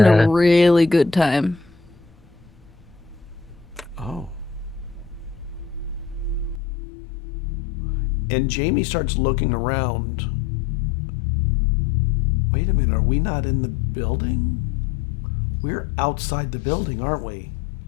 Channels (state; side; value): drops out; right; at 6.6 s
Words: Yeah. a really good time. Oh. And Jamie starts looking around. Wait a minute, are we not in the building? We're outside the building, aren't we?